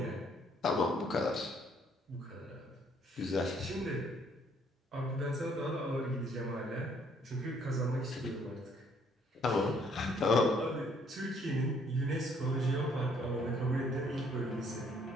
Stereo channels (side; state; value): both; normal; correlation 0.65